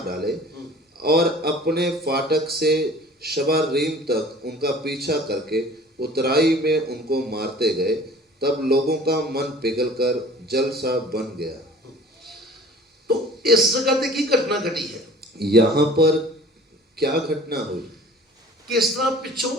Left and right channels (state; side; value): normal; both; correlation 0.47